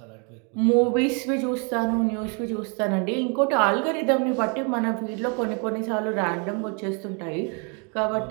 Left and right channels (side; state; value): left; quieter; 36.4 dB